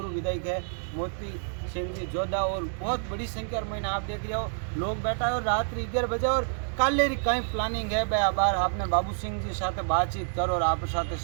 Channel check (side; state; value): left; silent; digital silence